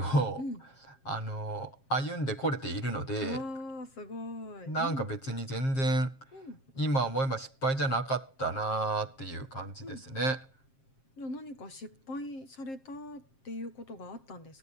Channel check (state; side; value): late; right; 7.5 ms